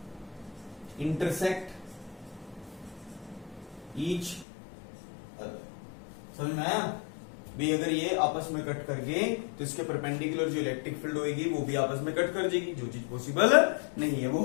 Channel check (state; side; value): drops out; right; at 4.5 s